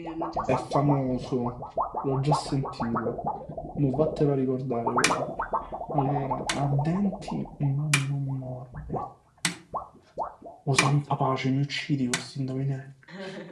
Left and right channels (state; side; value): identical; both; correlation 1.00